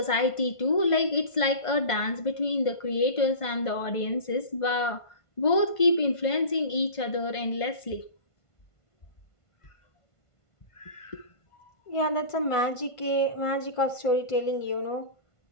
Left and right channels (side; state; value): right; late; 1.5 ms